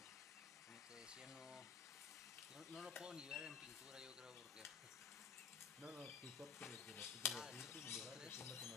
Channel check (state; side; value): quieter; right; 6.4 dB